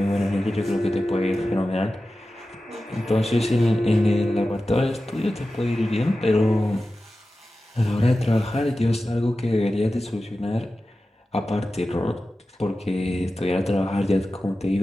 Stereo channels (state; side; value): normal; both; correlation 0.94